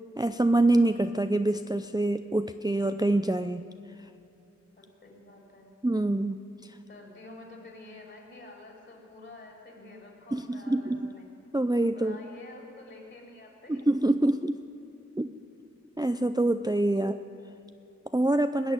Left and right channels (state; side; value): normal; both; correlation 0.89